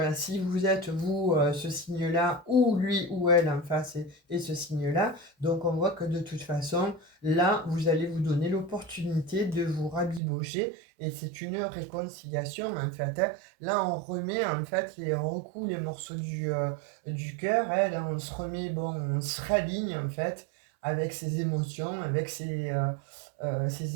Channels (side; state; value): left; drops out; at 10.2 s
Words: si vous êtes vous ce signe-là, ou lui ou elle en face et ce signe-là, donc on voit que de toute façon, là, vous allez vous donner l'opportunité de vous rabibocher, et c'est une réconciliation en fait, hein. Là, on remet en fait, on recoue les morceaux du cœur, hein. Là, on se remet, bon, on se raligne en fait avec ses émotions, avec ses